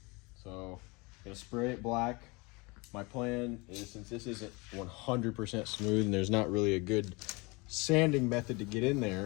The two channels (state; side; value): quieter; right; 26.7 dB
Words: So gonna spray it black. My plan is, since this isn't 100% smooth and there's not really a good sanding method to get in